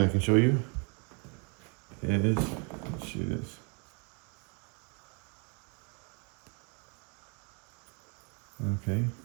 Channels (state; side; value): quieter; left; 36.3 dB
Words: I can show you. It is, let's see this. Okay,